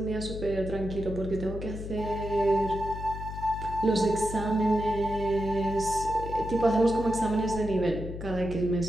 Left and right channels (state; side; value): noise; left; hum, 8 dB below the sound